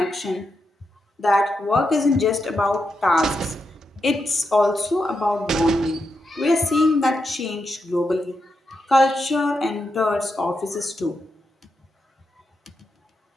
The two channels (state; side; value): normal; both; correlation 0.85